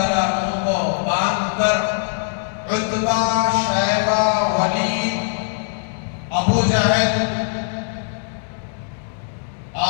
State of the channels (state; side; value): silent; right; 65 dB below the other